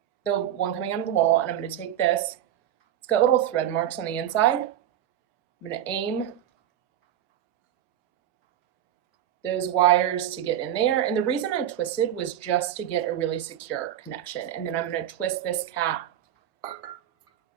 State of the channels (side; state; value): left; quieter; 11.2 dB